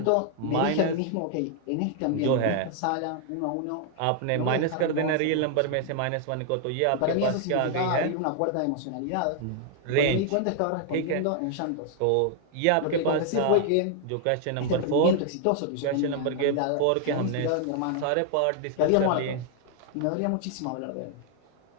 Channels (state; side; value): different; both; correlation 0.00